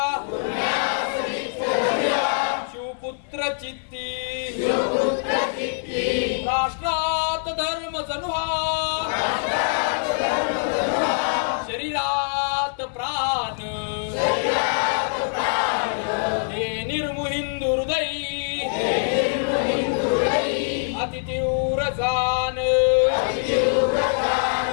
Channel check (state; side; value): silent; right; digital silence